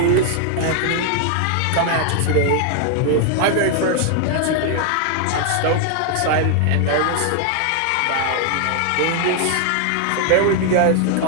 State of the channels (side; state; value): both; different; correlation 0.00